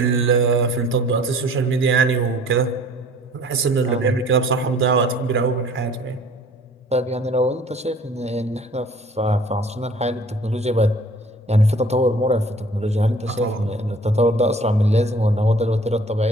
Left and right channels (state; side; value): normal; both; correlation 0.51